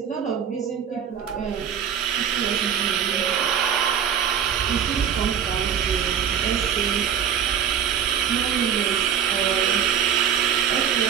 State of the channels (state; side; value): quieter; left; 8.5 dB